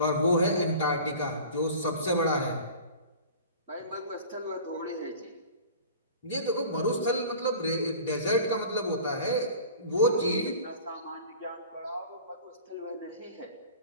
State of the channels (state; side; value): inverted; both; correlation -0.41